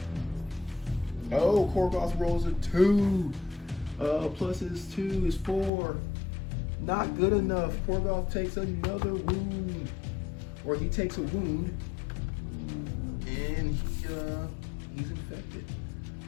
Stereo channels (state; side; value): drops out; right; at 5.7 s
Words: now. Oh, Korgoth rolls a 2. Plus his 2 is 4. Not good enough. Korgoth takes another wound. Or he takes a wound. And he's infected.